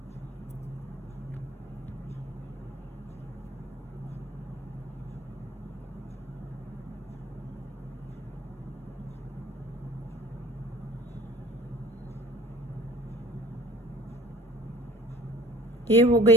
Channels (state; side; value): normal; both; correlation 0.46